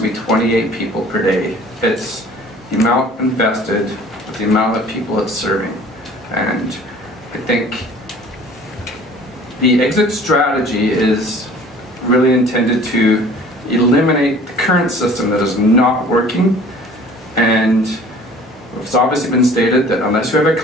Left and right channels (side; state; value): both; normal; correlation 0.48